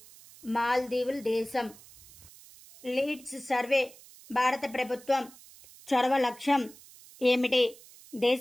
మాల్దీవుల దేశం. లీడ్స్ సర్వే భారత ప్రభుత్వం చొరవ లక్ష్యం ఏమిటి?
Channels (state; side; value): noise; right; hiss, 22 dB below the sound